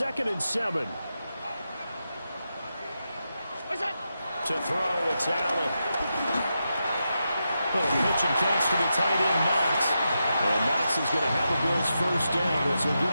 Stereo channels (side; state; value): both; inverted; correlation -0.87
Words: and 7. To throw, it's Allen. Little pitch and catch to the tight end, Knox. And Knox is going to have the Bills 1st down as he'll get